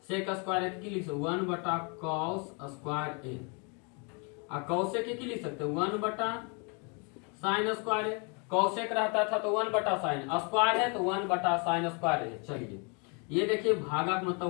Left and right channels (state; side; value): quieter; right; 34.7 dB